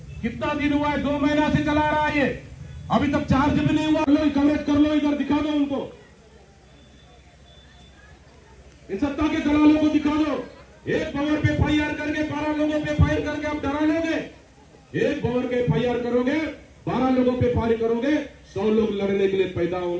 कितना दिन हुआ है? 2 महीना से चला रहा है ये, अभी तक चार्ज भी नहीं हुआ। लो कवरेज कर लो, इधर दिखा दो उनको, इन सत्ता के दलालों को दिखा दो। एक भवर पे एफआईआर करके 12 लोगों पे फायर करके आप डरा लोगे। एक भवर पे एफआईआर करोगे, 12 लोगों पे फायर करोगे, 100 लोग लड़ने के लिए पैदा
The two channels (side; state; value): both; identical; correlation 1.00